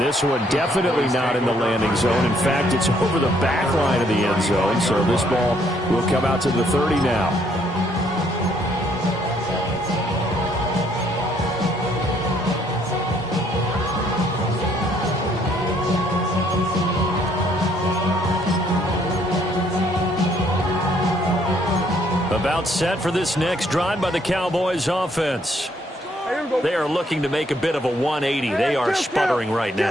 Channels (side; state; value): both; normal; correlation 0.67